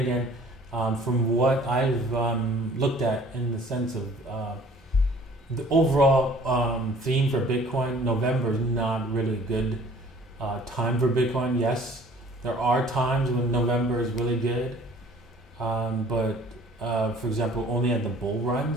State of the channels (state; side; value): normal; both; correlation 0.52